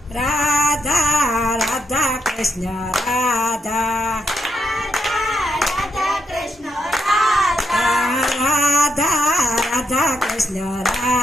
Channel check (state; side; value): normal; both; correlation 0.79